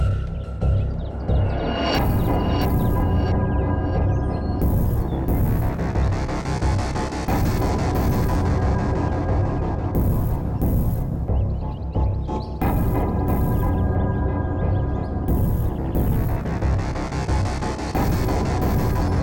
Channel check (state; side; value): identical; both; correlation 1.00